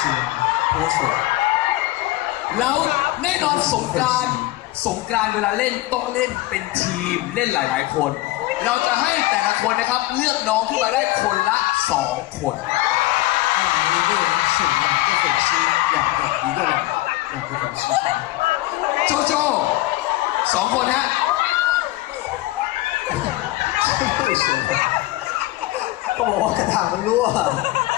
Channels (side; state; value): right; quieter; 17.5 dB